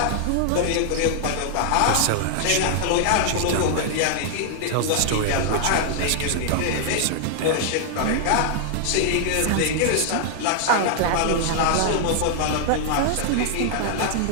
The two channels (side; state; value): both; different; correlation -0.01